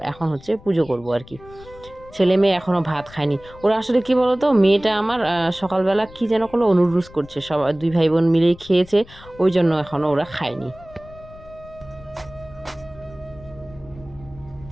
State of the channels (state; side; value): noise; left; rumble, 21 dB below the sound